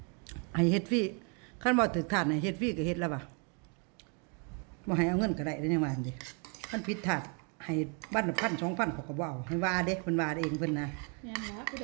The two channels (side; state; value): left; quieter; 36.7 dB